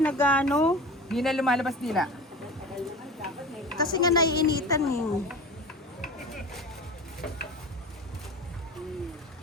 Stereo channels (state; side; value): normal; both; correlation 0.33